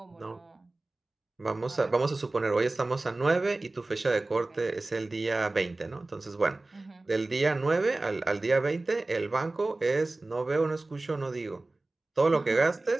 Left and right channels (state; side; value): quieter; left; 3.0 dB